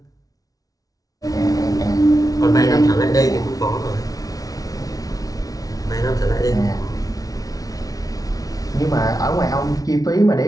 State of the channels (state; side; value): late; right; 0.18 ms